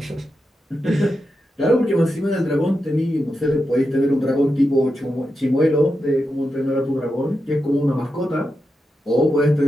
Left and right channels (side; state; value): both; normal; correlation 0.88